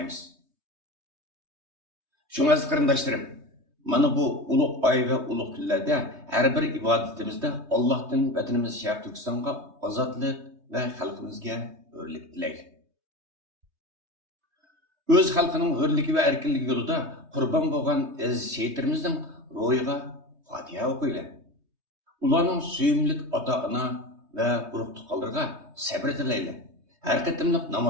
Shunga qarindoshlarim, mana bu ulug' oy va ulug' kunlarda har bir ibodatimizda Allohdan vatanimiz Sharq Turkistonga ozodlik va xalqimizga hurlik tilaylik. O'z xalqining hurligi va erkinligi yo'lida qurbon bo'lgan aziz shehitlarimizning ro'yiga Fatiha o'qiylik. Ularning suyumlik ota-ona va urug' tuqqanlarga sabr tilaylik. Har qatimliq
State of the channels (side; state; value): left; late; 3.2 ms